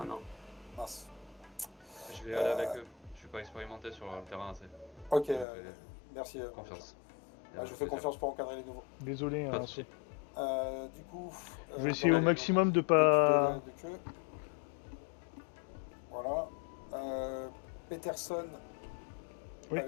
non. Mince. Je vais aller avec eux. Je suis pas expérimenté sur le terrain assez. Ok, Donc, merci. confiance. Je vous fais confiance pour encadrer les nouveaux. Désolé, Pas hein, de soucis. Du coup, je vais essayer au dans maximum de l'équipe pas. de queue. Voilà. Peterson Oui.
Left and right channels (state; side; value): drops out; right; at 5.5 s